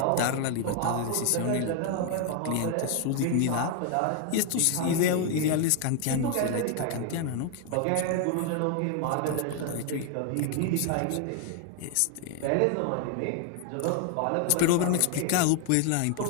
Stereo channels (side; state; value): both; different; correlation 0.00